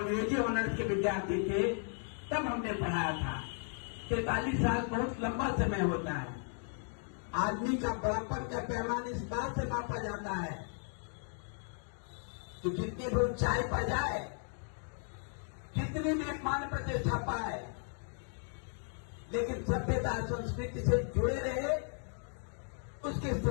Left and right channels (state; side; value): silent; right; 54 dB below the other